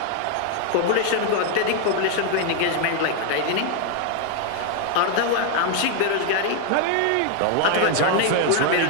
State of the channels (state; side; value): different; both; correlation 0.00